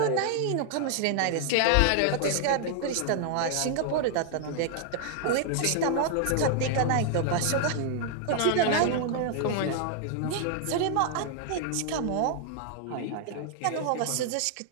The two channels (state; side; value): different; both; correlation 0.00